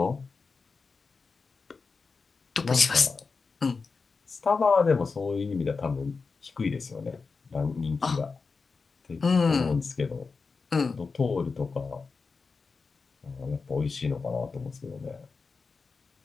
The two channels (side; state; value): right; quieter; 4.6 dB